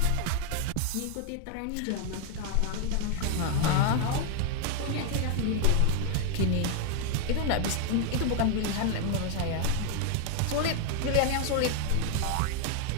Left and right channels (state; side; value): different; both; correlation 0.00